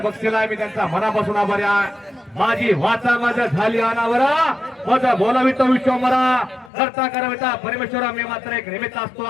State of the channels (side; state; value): right; drops out; at 6.7 s